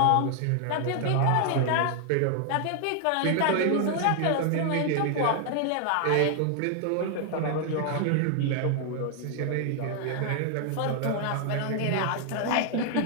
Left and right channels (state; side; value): different; both; correlation 0.00